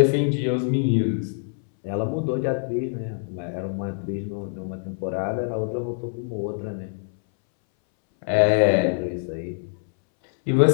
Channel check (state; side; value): silent; right; 62 dB below the other